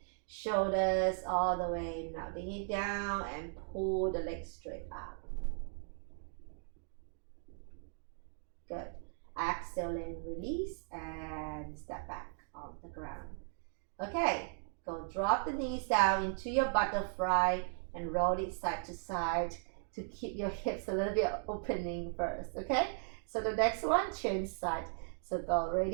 Shoulders all the way, melting it down and pull the legs straight up. Good. Exhale and release and step back on the ground. Okay, go drop the knees down into your butterfly and roll it side to side to keep your hips a little bit opening first. Okay, so the next one, change side. So go,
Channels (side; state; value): left; silent; 53 dB below the other